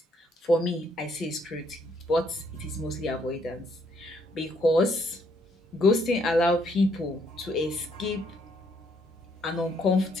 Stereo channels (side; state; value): both; normal; correlation 0.69